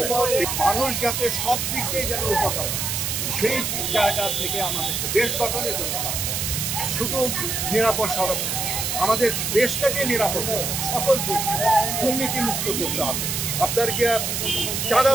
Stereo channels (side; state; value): right; noise; hiss, 1 dB below the sound